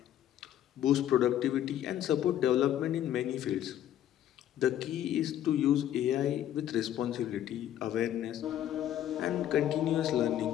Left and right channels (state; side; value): quieter; right; 11.4 dB